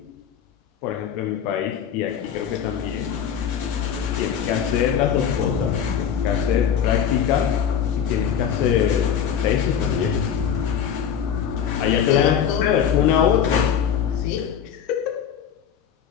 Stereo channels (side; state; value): right; quieter; 8.4 dB